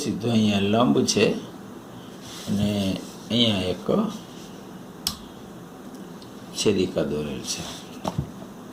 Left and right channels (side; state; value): both; identical; correlation 1.00